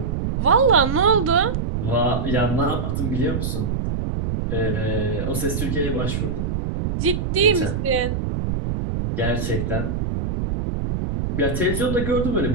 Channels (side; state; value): right; noise; rumble, 2 dB below the sound